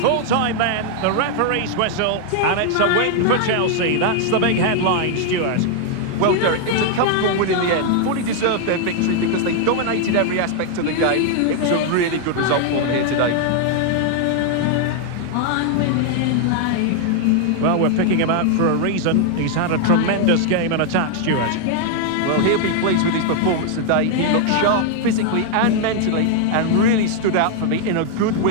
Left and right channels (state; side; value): different; both; correlation 0.00